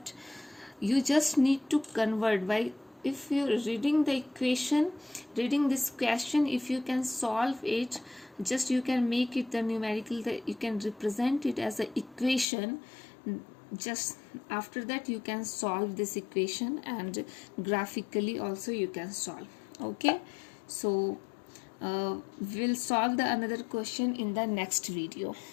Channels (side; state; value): right; drops out; at 12.5 s